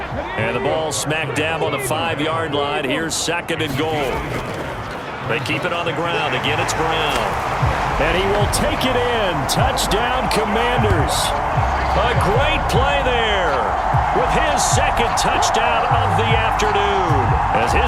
And the ball smack dab on the 5-yard line. Here's 2nd and goal. They keep it on the ground. Again, it's Brown. And he will take it in. Touchdown, Commanders. A great play there with his 2nd touchdown of the afternoon as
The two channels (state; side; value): identical; both; correlation 1.00